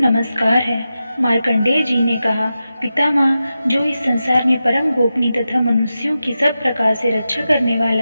है। मार्कंडेय जी ने कहा, पितामह, जो इस संसार में परम गोपनीय तथा मनुष्यों की सब प्रकार से रक्षा करने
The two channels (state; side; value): inverted; both; correlation -0.91